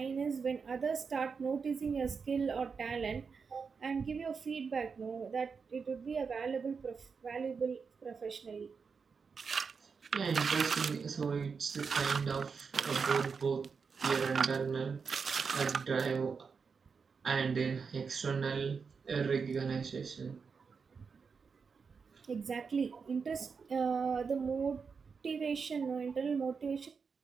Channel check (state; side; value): quieter; left; 5.5 dB